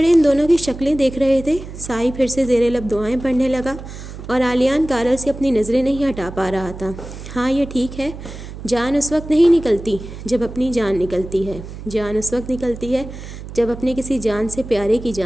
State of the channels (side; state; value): right; noise; hum, 12 dB below the sound